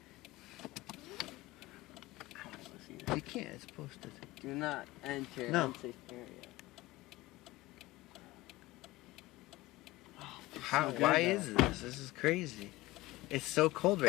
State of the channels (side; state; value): right; quieter; 18.9 dB